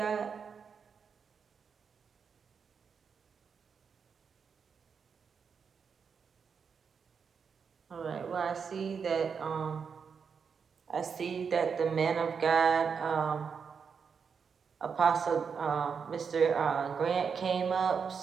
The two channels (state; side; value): quieter; left; 6.2 dB